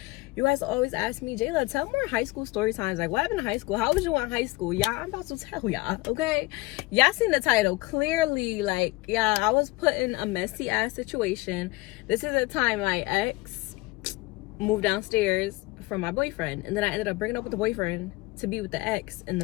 you guys always ask me, Jaelah, tell more high school story times. Like, what happened in high school? How was you in high school? Yeah, I'm about to tell y'all, okay? Y'all seen the title. Clearly, like, yeah, I was put in a messy ass situation. This is the time my ex moved downstairs from my boyfriend, and then I ended up bringing up with the boyfriend to be with the ex in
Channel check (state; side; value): quieter; right; 21.9 dB